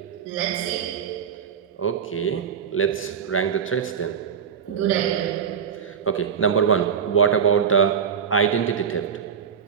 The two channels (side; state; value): left; quieter; 7.3 dB